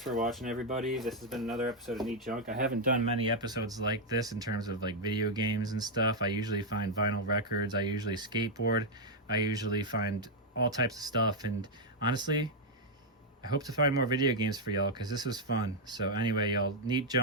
watching, everybody. This has been another episode of Neat Junk. I haven't done many episodes like this in terms of like video games and stuff. I usually find vinyl records. I usually skateboard. I usually find all types of stuff. And honestly, I hope to find more video games for y'all because this was fun. So anyway, y'all, Neat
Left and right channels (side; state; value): both; normal; correlation 0.00